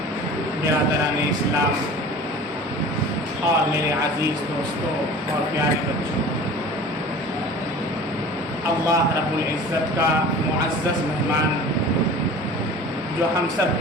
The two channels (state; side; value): normal; both; correlation 0.41